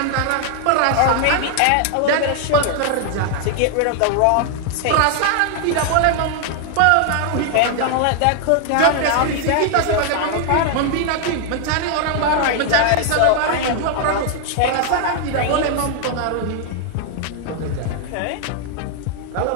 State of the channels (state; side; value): different; both; correlation 0.00